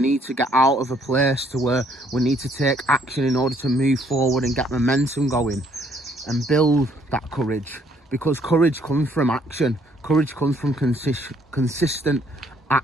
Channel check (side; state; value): both; normal; correlation 0.66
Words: to get out of a place to where we need to take action in order to move forward and get momentum going and build that courage, because courage comes from action. Courage comes from consistent